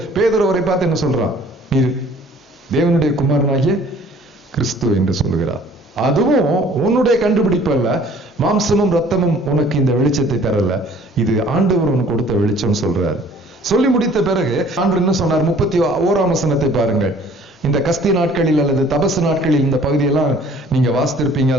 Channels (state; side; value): normal; both; correlation 0.54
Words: பேதுரு அவரை பார்த்து என்ன சொல்றான்? நீ தேவனுடைய குமாரனாகிய கிறிஸ்து என்று சொல்லுகிறார். அதுவும் உன்னுடைய கண்டுபிடிப்பு அல்ல, மாம்சமும் ரத்தமும் உனக்கு இந்த வெளிச்சத்தை தரல, இது ஆண்டவர் உனக்கு கொடுத்த வெளிச்சம் சொல்றார். சொல்லி முடித்த பிறகு ஆண்டவர் என்ன சொன்னார்? 31ஆம் வசனத்தை பாருங்கள். இந்த கஸ்தி நாட்களில் அல்லது தபசு நாட்களில் இந்த பகுதியெல்லாம் நீங்க வாசித்திருப்பீங்க